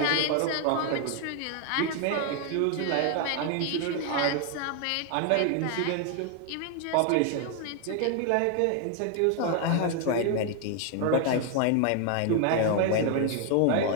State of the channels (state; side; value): different; both; correlation 0.01